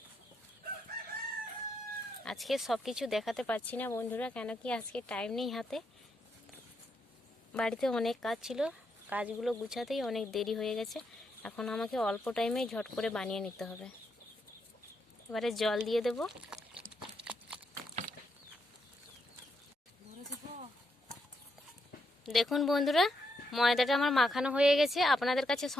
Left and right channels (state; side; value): normal; both; correlation 0.79